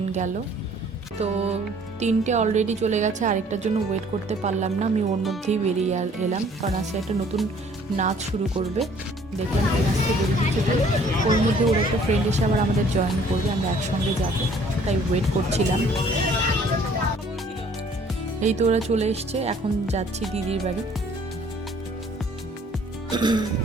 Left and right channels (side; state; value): both; normal; correlation 0.57